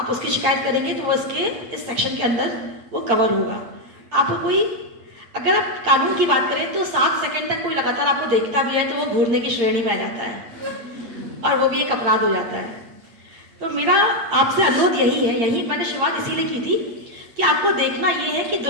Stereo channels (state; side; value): late; left; 8.8 ms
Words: उसकी शिकायत करेंगे तो वो इसके इस सेक्शन के अंदर वो कवर होगा। आपको कोई, अगर आप कानून की बात करें तो 7 सेकंड तक कोई लगातार आपको देखता भी है तो वो घूरने की श्रेणी में आ जाता है और वो भी एक अपराध हो जाता है। तो मेरा आपसे अनुरोध यही है, यही मैंने शुरुआत इसीलिए की थी कि आपको देखना ये है कि